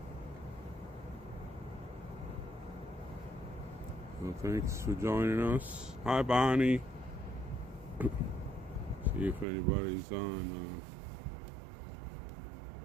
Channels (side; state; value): left; drops out; at 9.5 s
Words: So thanks for joining us. Hi, Bonnie. See if anybody's on